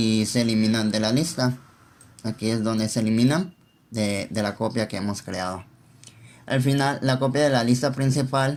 se eliminan de la lista. Aquí es donde se eliminan de la copia que hemos creado. Al final, la copia de la lista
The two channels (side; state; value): both; identical; correlation 1.00